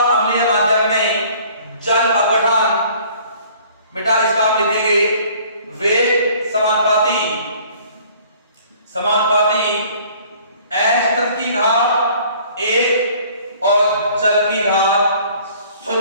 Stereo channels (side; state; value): both; inverted; correlation -0.54